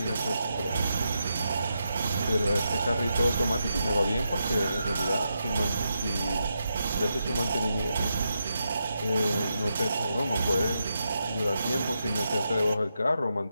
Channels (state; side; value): inverted; both; correlation -0.85